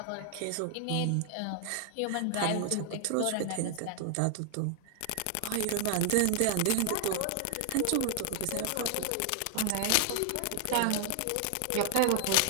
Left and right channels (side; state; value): both; different; correlation 0.00